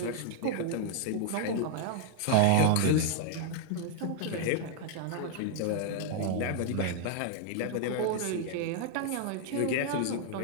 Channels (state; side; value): different; both; correlation -0.01